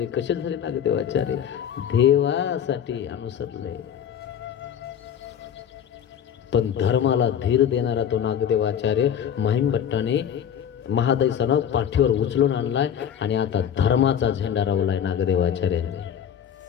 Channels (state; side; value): quieter; right; 9.0 dB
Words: कसे झाले नागदेवाचार्य? देवासाठी अनुसरले. पण धर्माला धीर देणारा तो नागदेवाचार्य माहीम भट्टाने महादैसानं पाठीवर उचलून आणलाय आणि आता धर्माचा झेंडा रावलाय नागदेवाचार्याने.